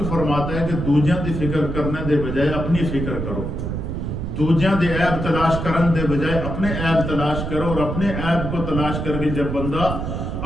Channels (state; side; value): noise; right; rumble, 4 dB below the sound